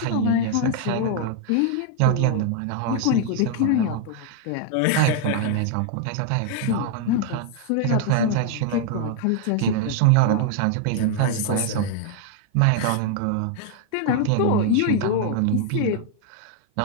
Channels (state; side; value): different; both; correlation 0.00